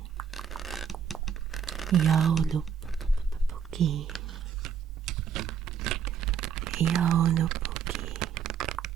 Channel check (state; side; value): quieter; left; 7.4 dB